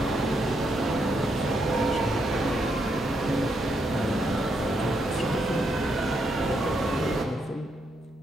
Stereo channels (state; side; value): normal; both; correlation 0.79